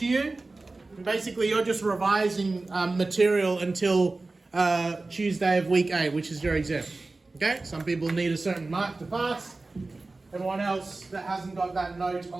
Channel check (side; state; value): left; quieter; 3.3 dB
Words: you. And basically, you're just revising material until Tuesday of week 8, which is your exam. Okay, some people need a certain mark to pass. Everyone else that hasn't got that note